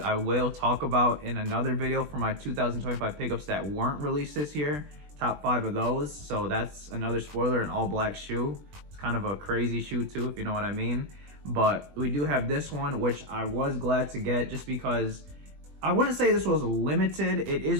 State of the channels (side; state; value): left; late; 20 ms